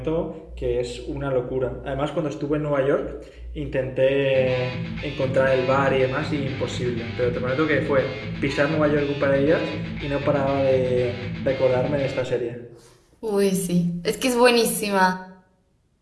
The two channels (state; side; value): identical; both; correlation 1.00